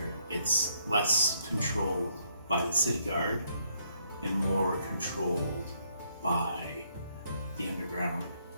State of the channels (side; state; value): both; inverted; correlation -0.71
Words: it's less controlled by the city guard and more controlled by the underground